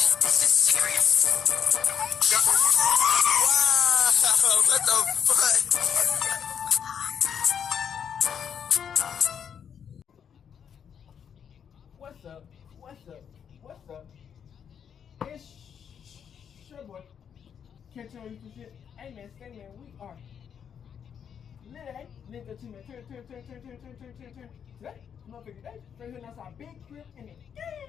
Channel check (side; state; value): right; quieter; 7.9 dB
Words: This is serious. Wow, what the fuck? What's up? It's your boy. Catch on YouTube shit. Hey man, we are lit, nigga to me. Turn. Today, motherfucker, today, straight here outside, big crib in the